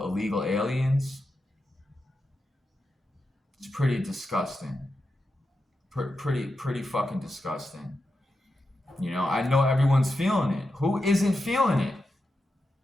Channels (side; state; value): both; normal; correlation 0.88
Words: aliens. It's pretty disgusting. Pretty fucking disgusting. I know everyone's feeling it. Who isn't feeling it?